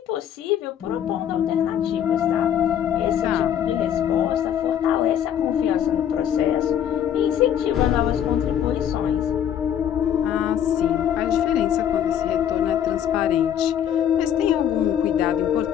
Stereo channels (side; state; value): right; quieter; 9.6 dB